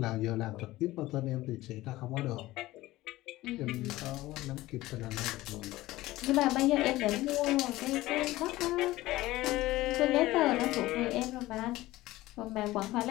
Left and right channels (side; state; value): right; quieter; 17.5 dB